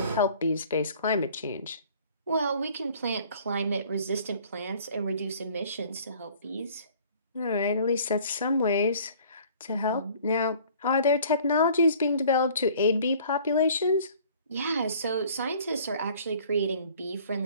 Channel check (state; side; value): inverted; both; correlation -0.52